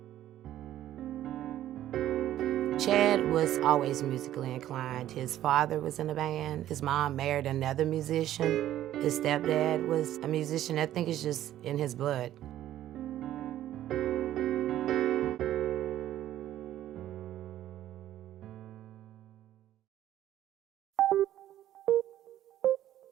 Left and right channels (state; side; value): quieter; left; 12.7 dB